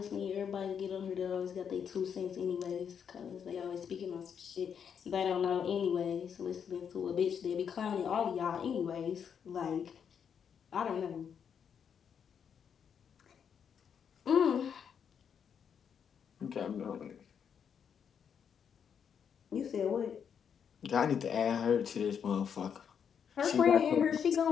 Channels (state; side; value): quieter; right; 7.5 dB